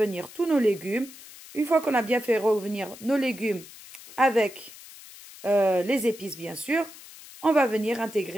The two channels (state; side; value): noise; left; hiss, 18 dB below the sound